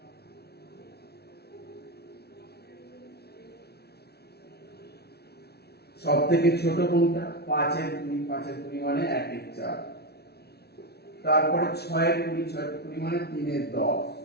সব থেকে ছোট কোনটা, 5 এর 20, 5 এর 20 মানে 1 এর 4, তারপরে 6 এর 20, 6 এর 20 মানে 3 এর 10,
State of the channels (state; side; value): late; right; 0.47 ms